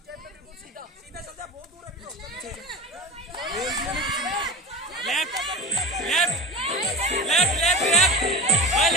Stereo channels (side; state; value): both; normal; correlation 0.29